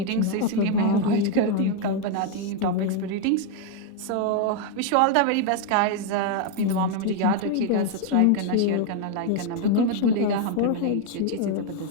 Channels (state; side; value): different; both; correlation 0.01